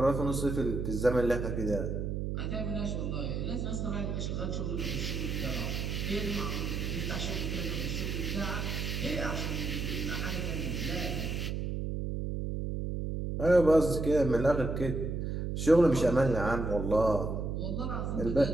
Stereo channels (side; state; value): right; noise; hum, 2 dB below the sound